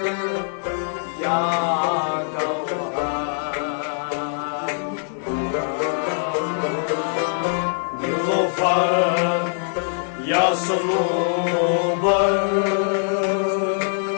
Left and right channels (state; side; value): silent; right; digital silence